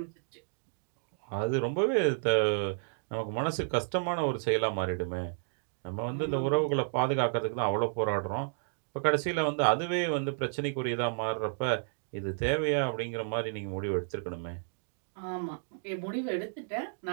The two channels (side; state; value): left; silent; digital silence